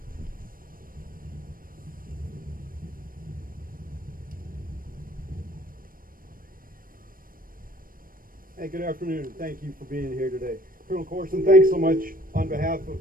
Hey, good afternoon. Thank you for being here today. Colonel Corson, thanks so much on behalf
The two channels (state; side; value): late; left; 0.41 ms